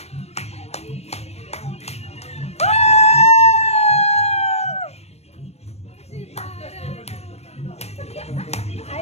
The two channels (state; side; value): late; right; 0.31 ms